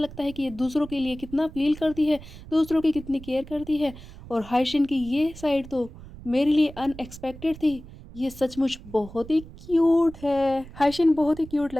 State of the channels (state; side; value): noise; right; rumble, 16 dB below the sound